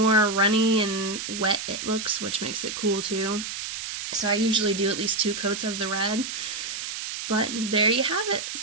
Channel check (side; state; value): right; noise; hiss, 6 dB below the sound